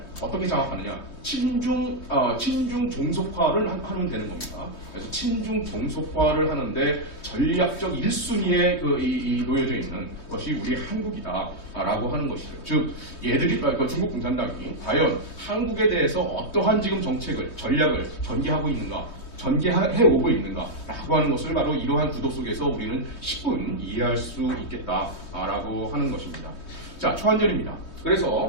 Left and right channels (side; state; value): right; late; 3.2 ms